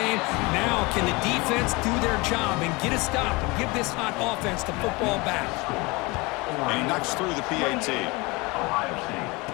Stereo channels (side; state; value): right; quieter; 25.1 dB